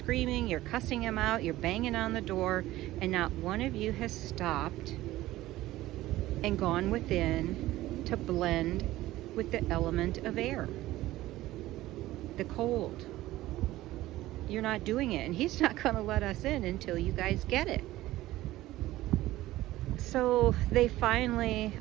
you're cussing him out, you're banging on the door, and not one of you has stopped and gone within to blend with the element of air, the cold. You're not doing it, and he's not going to let us in until you guys get it. So they finally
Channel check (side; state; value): left; quieter; 16.3 dB